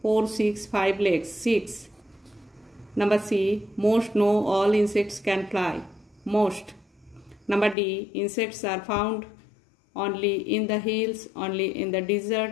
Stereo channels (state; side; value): drops out; right; at 7.8 s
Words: 4, 6, 5 legs, 6. Number C, most, no, all insects can fly, most. Number D, insects are found only in the hills, only in the